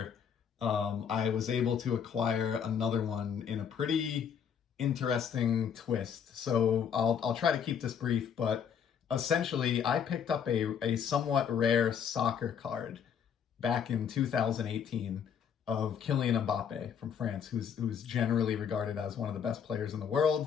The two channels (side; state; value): right; quieter; 7.7 dB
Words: I was able to acquire another one in a pretty interesting twist. So I'll try to keep this brief, but essentially I picked up a somewhat rare soccer card back in 2018 of Kylian Mbappe from France, who's generally regarded as one of the best players in the